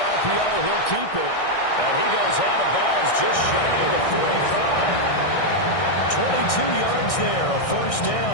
RPO. He'll keep it. And he goes out of bounds just shy of the 45. 22 yards there, a first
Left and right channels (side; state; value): right; late; 1.6 ms